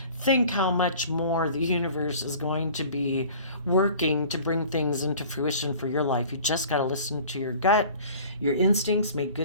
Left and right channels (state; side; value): inverted; both; correlation -0.45